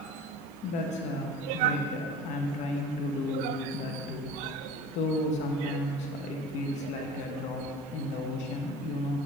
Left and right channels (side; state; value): both; normal; correlation 0.39